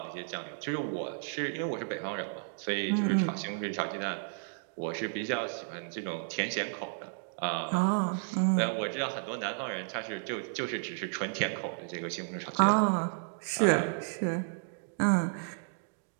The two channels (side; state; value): left; silent; digital silence